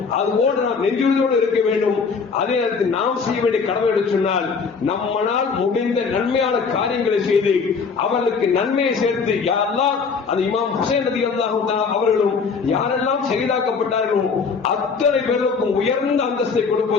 அதுபோன்று நாம் நெஞ்சுறுதியோடு இருக்க வேண்டும். அதே நேரத்தில் நாம் செய்ய வேண்டிய கடமை என்று சொன்னால் நம்மால் முடிந்த நன்மையான காரியங்களை செய்து அவர்களுக்கு நன்மையை சேர்த்து, யாரெல்லாம் அந்த இமாம் ஹுசைன் ரலியல்லாஹு அன்ஹு அவர்களும் யாரெல்லாம் ஷஹீதாக்கப்பட்டார்களோ அத்தனை பேருக்கும் உயர்ந்த அந்தஸ்தை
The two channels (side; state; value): right; quieter; 5.3 dB